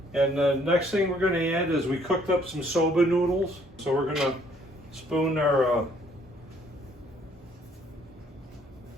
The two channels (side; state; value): both; normal; correlation 0.63